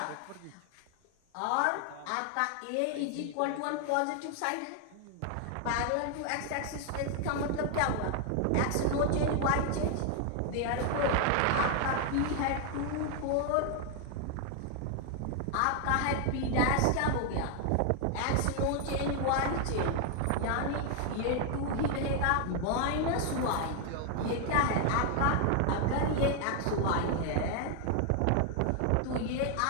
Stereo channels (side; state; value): both; different; correlation 0.00